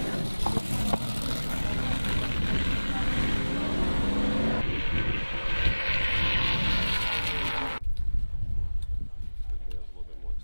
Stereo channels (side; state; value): both; inverted; correlation -1.00